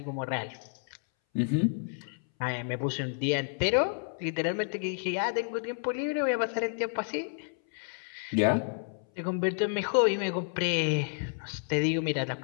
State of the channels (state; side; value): silent; right; 58 dB below the other